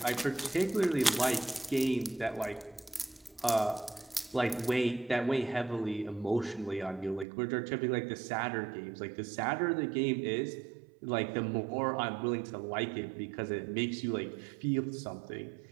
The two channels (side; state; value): left; drops out; at 7.2 s